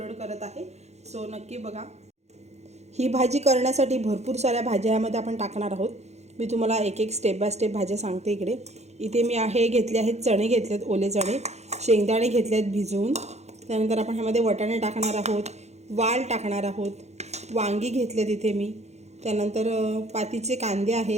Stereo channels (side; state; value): left; late; 0.32 ms